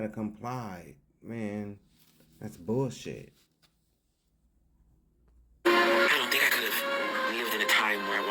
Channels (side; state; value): both; identical; correlation 1.00